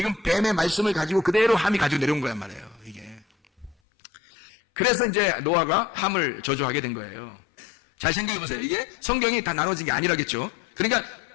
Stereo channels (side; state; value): right; drops out; at 3.8 s